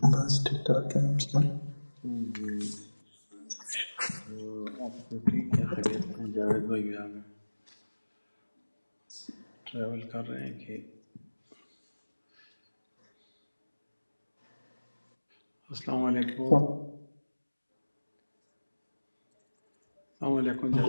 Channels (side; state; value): both; inverted; correlation -1.00